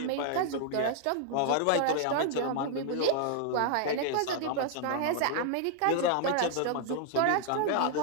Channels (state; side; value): different; both; correlation -0.01